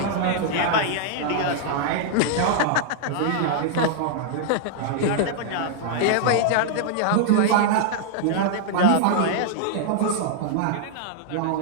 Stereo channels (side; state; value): both; different; correlation -0.01